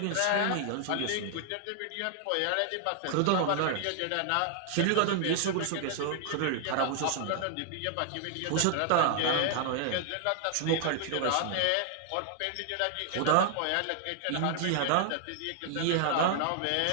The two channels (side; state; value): both; different; correlation 0.00